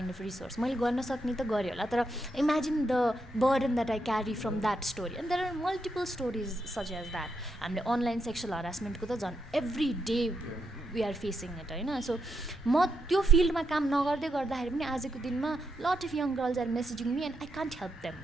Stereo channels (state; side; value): normal; both; correlation 0.81